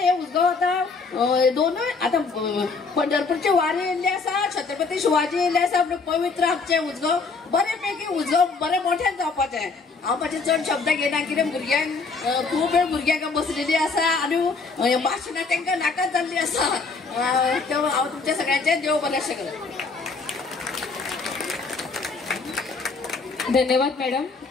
उजगांव आता दोनूय आता पंढरपूरचे वारी येयल्ले आसा, छत्रपती शिवाजी येयल्ले आसा, पवित्र आमचे उजगांव बरे पैकी उजगांव बरे मोठ्यान जावपाचें. हांव मातशें चड शब्द घेयना, कितें भुरग्यांक खूब वेळ भुरग्यांक बसलेली आसा आनी भाशणां तांकां नाकाच जाल्ली आसा. हांव तुमच्या सगळ्यांचें देव बरेंशें करूं. धन्यवाद मॅडम.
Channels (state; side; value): quieter; right; 4.4 dB